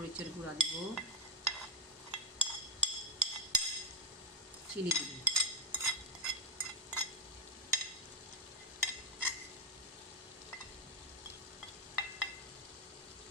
গুঁড়া দিব, চিনি দিব।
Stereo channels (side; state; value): both; normal; correlation 0.02